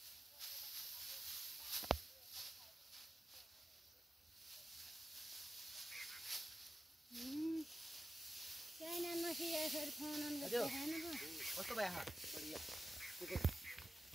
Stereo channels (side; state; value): both; normal; correlation 0.93